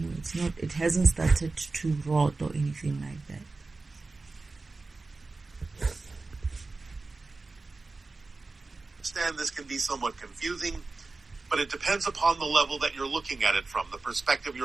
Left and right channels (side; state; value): left; quieter; 3.7 dB